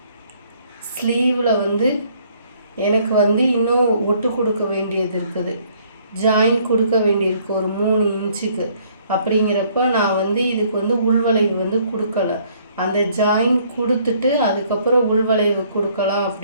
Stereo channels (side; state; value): both; inverted; correlation -0.63